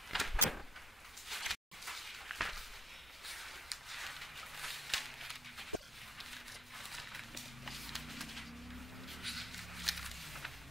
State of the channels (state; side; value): normal; both; correlation 0.64